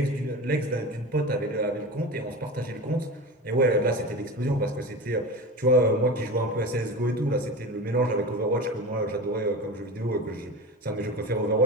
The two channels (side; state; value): both; normal; correlation 0.29